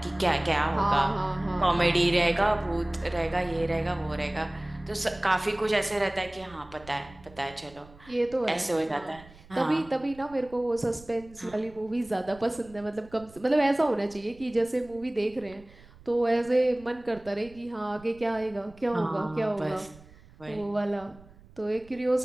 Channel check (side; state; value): right; noise; rumble, 23 dB below the sound